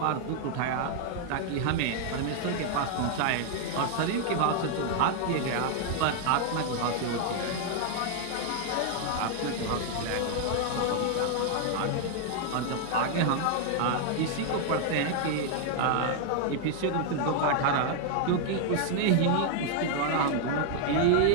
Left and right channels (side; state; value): both; different; correlation 0.00